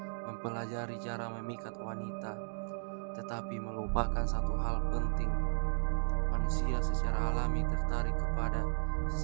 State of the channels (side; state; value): left; silent; digital silence